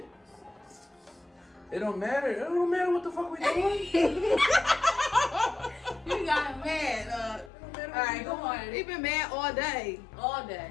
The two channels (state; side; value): drops out; right; at 7.5 s